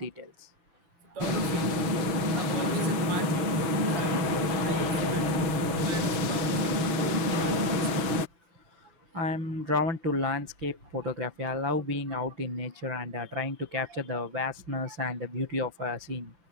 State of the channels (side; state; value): left; late; 6.3 ms